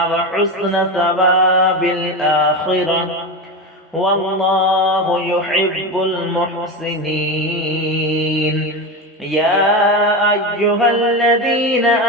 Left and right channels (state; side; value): normal; both; correlation 0.19